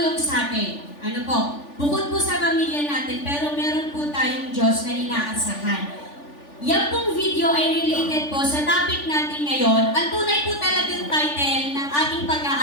sa atin. Ano po? Bukod po sa pamilya natin, pero meron po tayong Diyos na inaasahan. Yan pong video ay related po sa topic natin ngayon. Ang tunay po talagang title ng ating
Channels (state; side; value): late; right; 3.4 ms